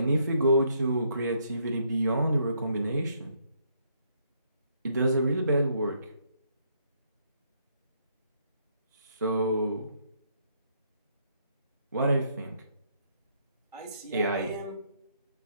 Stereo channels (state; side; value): inverted; both; correlation -0.71